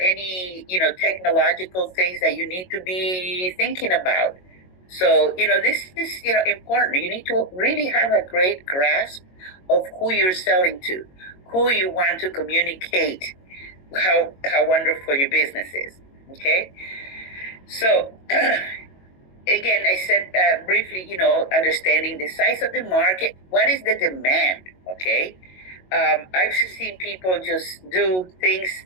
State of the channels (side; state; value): right; late; 22 ms